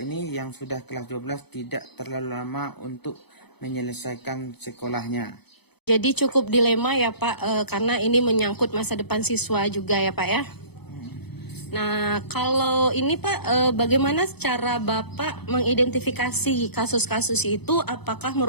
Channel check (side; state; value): right; late; 0.98 ms